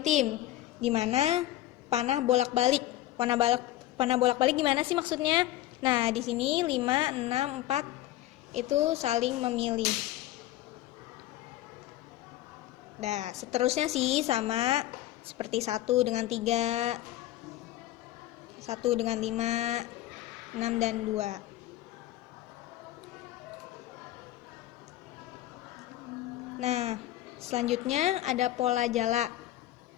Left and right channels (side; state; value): right; quieter; 14.8 dB